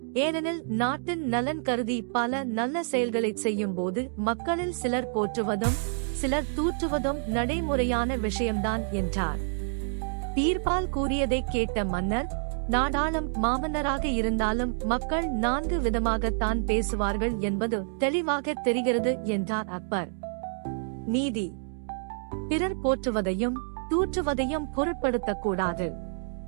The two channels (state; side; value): silent; left; digital silence